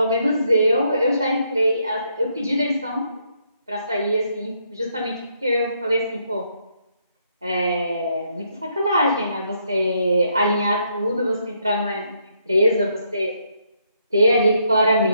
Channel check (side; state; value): both; inverted; correlation -0.74